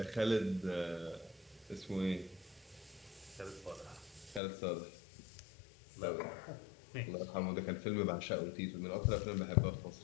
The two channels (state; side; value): drops out; right; at 4.4 s